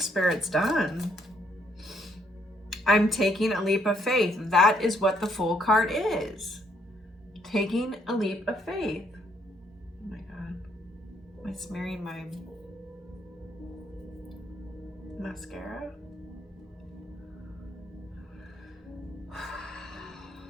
Spirit's done. I'm taking a leap of faith. That is what the Fool card is. Taking a leap of faith. Oh my God. Am I smearing my mascara?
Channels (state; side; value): normal; both; correlation 0.70